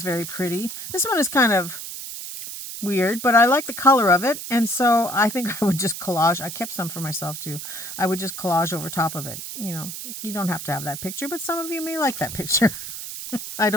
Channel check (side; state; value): right; noise; hiss, 8 dB below the sound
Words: very pretty. This one is kind of weird, but I like the color of it. And so I think I would just collage. I kept some for myself too. I would just collage over top of it. You know, you don't have to have that picture, but some of you may like that picture. I